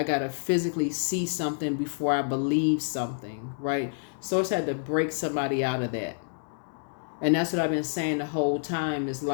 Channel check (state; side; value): silent; right; digital silence